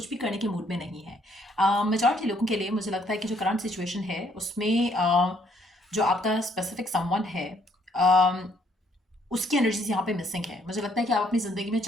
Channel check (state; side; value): normal; both; correlation 0.67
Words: भी करने के मूड में नहीं है। मेजॉरिटी लोगों के लिए मुझे लगता है कि जो करंट सिचुएशन है उसमें जो आपका स्पेसिफिक समवन है उसकी एनर्जीज यहाँ पे मिसिंग है। मुझे लगता है कि आप अपनी ज़िंदगी में